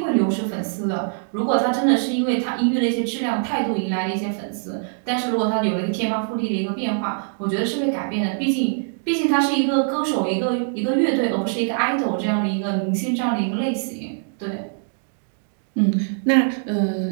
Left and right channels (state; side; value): silent; left; digital silence